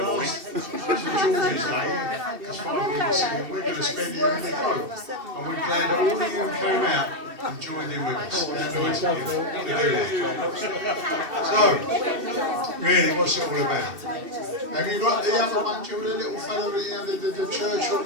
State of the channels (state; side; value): late; left; 2.7 ms